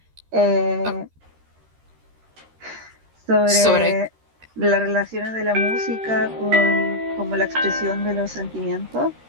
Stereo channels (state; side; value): late; left; 13 ms